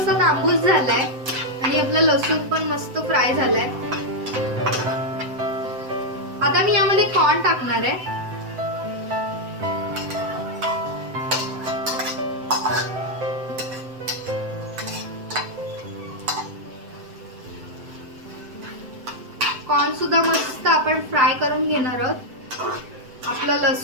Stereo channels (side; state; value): left; late; 7.8 ms